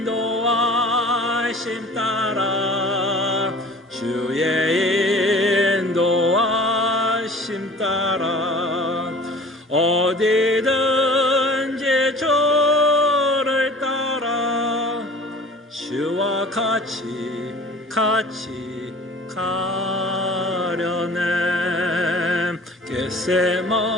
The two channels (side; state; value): both; normal; correlation 0.45